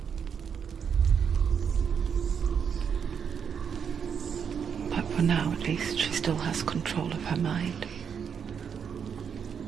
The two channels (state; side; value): quieter; left; 7.2 dB